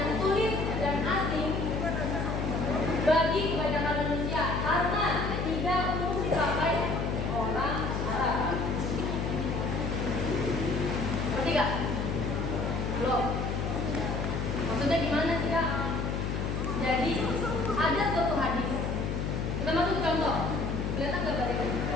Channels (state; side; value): noise; left; hum, 1 dB below the sound